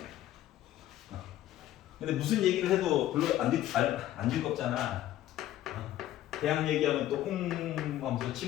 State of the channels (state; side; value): quieter; right; 13.4 dB